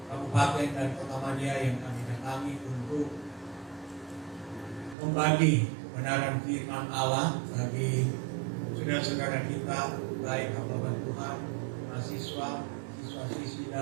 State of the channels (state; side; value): drops out; left; at 5.0 s